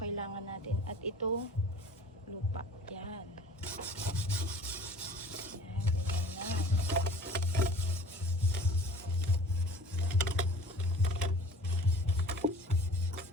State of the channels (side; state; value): both; normal; correlation 0.45